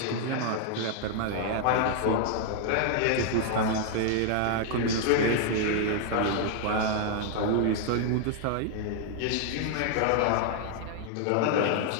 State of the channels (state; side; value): different; both; correlation 0.00